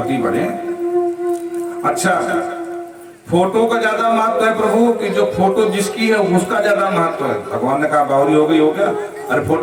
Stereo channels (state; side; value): identical; both; correlation 1.00